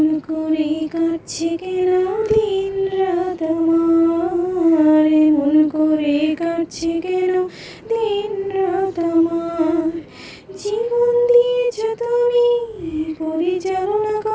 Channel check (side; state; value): both; identical; correlation 1.00